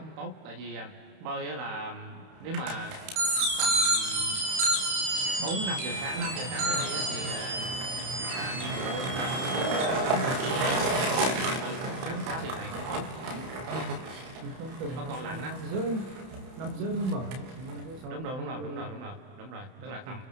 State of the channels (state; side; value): late; left; 31 ms